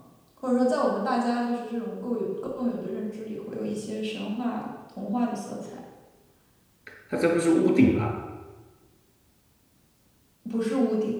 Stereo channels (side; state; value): both; identical; correlation 1.00